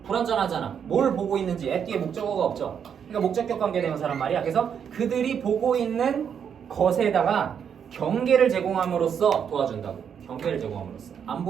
불완전하잖아. 뭘 보고 있는지 at 뒤에 목적어가 없죠. 그러니까 목적격 관계대명사란 말이야. 그래서 그들이 보고 있는 것에다가 경계를 제공함으로써 도와준다고. 경계를 제공함으로써. 안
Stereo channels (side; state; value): left; quieter; 7.8 dB